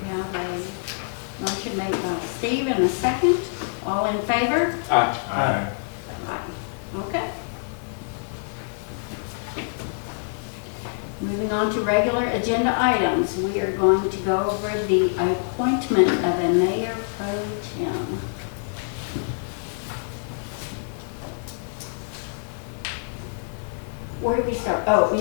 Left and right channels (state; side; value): silent; right; 61 dB below the other